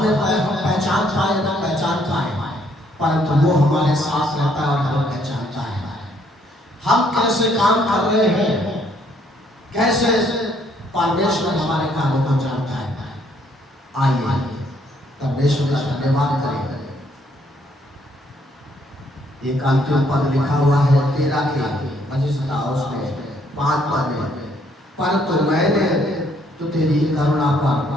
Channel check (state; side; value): normal; both; correlation 0.67